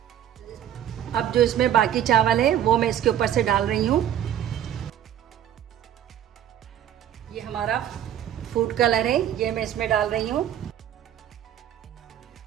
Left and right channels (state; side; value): quieter; left; 10.5 dB